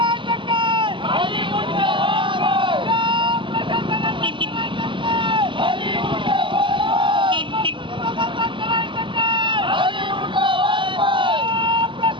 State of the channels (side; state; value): left; late; 0.24 ms